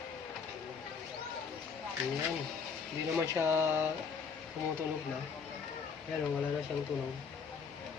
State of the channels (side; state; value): right; quieter; 5.9 dB